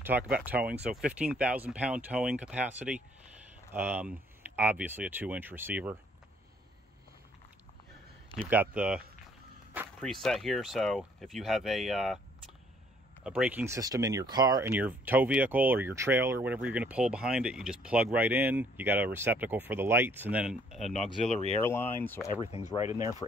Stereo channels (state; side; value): normal; both; correlation 0.63